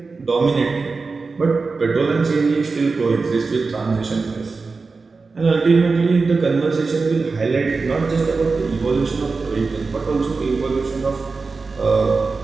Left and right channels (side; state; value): left; quieter; 4.2 dB